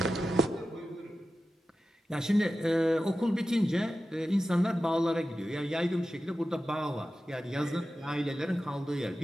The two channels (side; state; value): both; normal; correlation 0.93